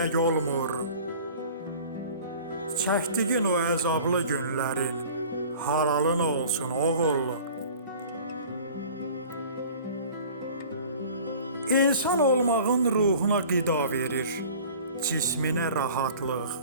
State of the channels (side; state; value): both; inverted; correlation -0.45